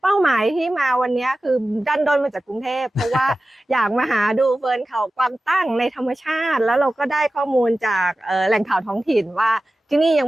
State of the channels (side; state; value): both; normal; correlation 0.95